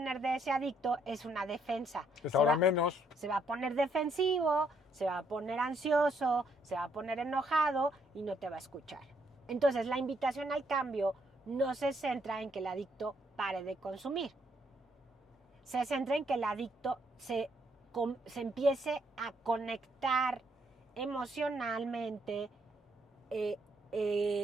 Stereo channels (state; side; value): normal; both; correlation 0.72